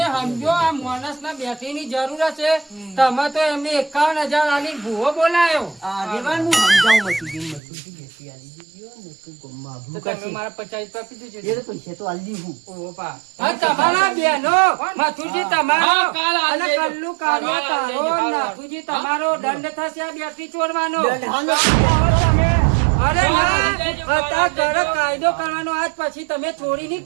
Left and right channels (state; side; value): drops out; left; at 7.6 s